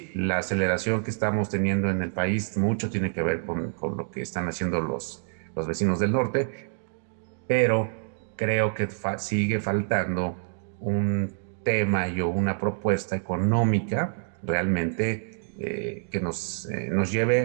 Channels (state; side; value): silent; left; digital silence